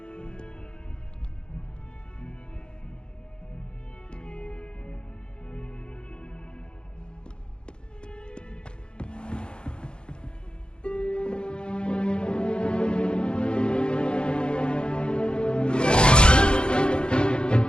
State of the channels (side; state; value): right; late; 0.051 ms